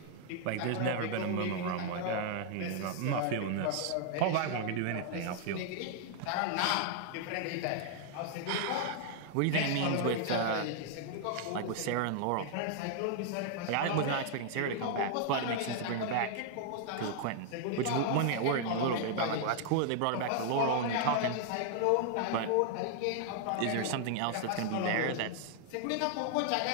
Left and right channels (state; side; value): different; both; correlation 0.00